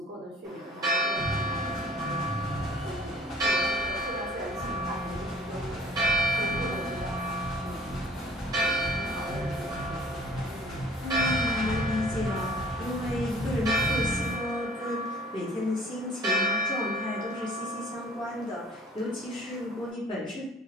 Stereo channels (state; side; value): normal; both; correlation 0.53